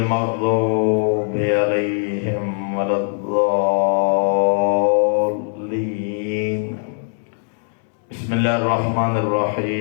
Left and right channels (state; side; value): silent; right; 66 dB below the other